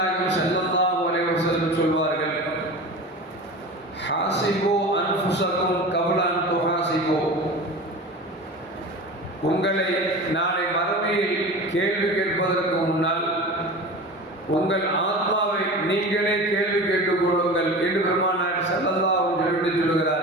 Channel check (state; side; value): normal; both; correlation 0.33